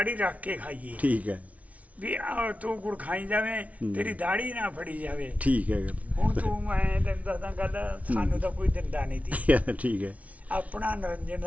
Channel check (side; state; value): left; late; 0.067 ms